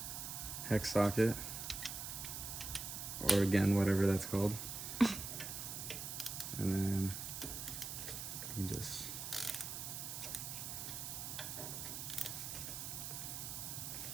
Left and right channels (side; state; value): right; noise; hiss, 5 dB below the sound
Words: hex socket, or again, whatever that's called. And then you just